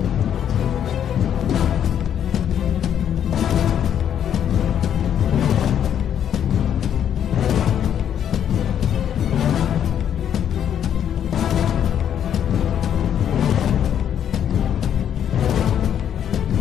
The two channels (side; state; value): right; quieter; 9.4 dB